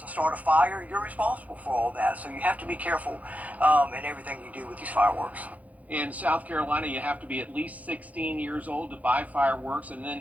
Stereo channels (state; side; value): late; left; 0.073 ms